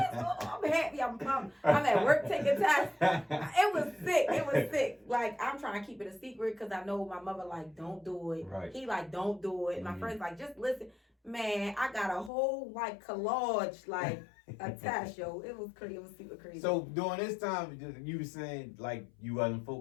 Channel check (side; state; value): right; drops out; at 12.3 s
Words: going on? I'm happy. I'm pumped. I'm at work taking tests. It was sick. Like, I'm trying to keep it a secret because I know my mother like, don't do it. Right. He like, don't do it. My friend's like, just listen. Man, I got a whole like collage, like a test, yo. It was crazy. It was super crazy. So during this time, you were saying like you wasn't